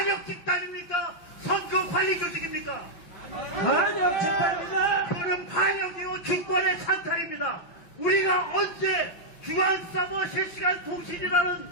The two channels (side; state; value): right; late; 5.6 ms